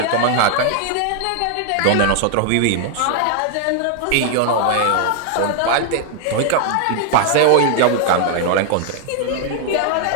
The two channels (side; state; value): both; different; correlation 0.00